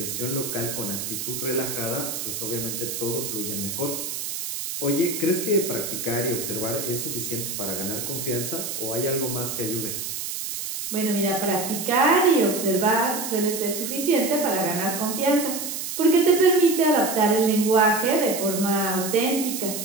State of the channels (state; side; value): noise; right; hiss, 5 dB below the sound